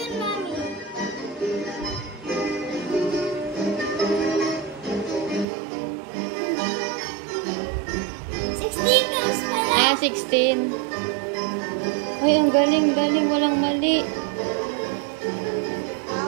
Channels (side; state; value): left; drops out; at 5.5 s